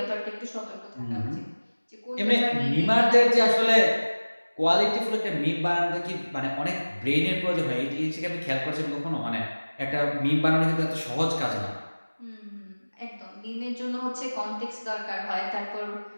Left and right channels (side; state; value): both; inverted; correlation -1.00